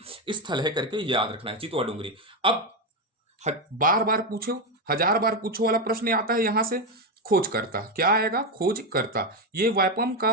स्थल है करके याद रखना है चितवा डोंगरी। अब बार बार पूछो, 1000 बार पूछो वाला प्रश्न आता है यहां से। खोज करता क्या आएगा? खोज करता। ये व्यापम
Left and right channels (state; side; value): normal; both; correlation 0.09